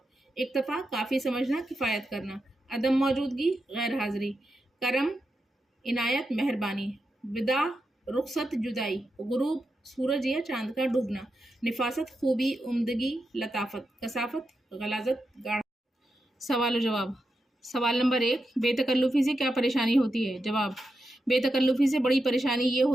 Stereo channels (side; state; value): both; normal; correlation 0.87